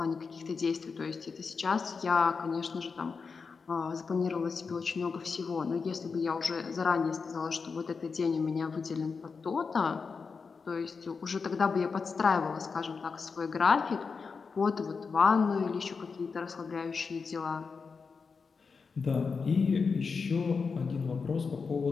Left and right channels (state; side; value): quieter; right; 5.1 dB